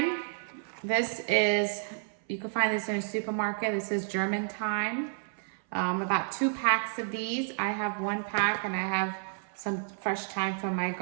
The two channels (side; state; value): left; silent; 57 dB below the other